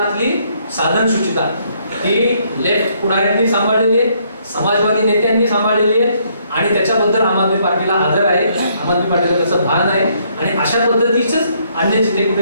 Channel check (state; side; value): inverted; both; correlation -0.69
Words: साधन सुचिता ही लेफ्ट पुढाऱ्यांनी सांभाळलेली आहे, समाजवादी नेत्यांनी सांभाळलेली आहे आणि त्याच्याबद्दल आम आदमी पार्टीला आदर आहे, आम आदमी पार्टीला त्याचं भान आहे. आणि अशा पद्धतीचंच अन्य जिथे कुठे